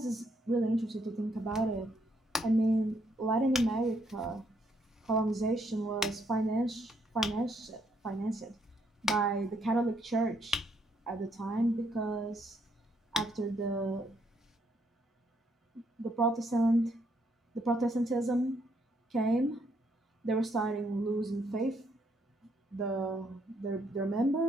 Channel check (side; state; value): both; normal; correlation 0.72